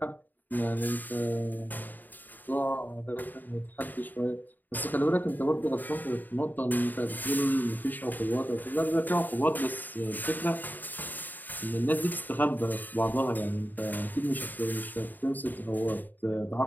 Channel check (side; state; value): right; late; 0.088 ms